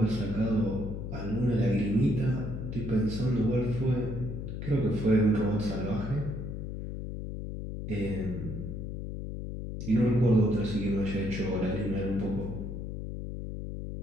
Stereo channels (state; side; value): noise; left; hum, 6 dB below the sound